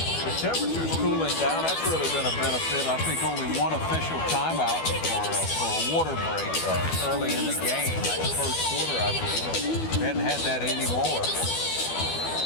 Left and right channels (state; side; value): late; right; 12 ms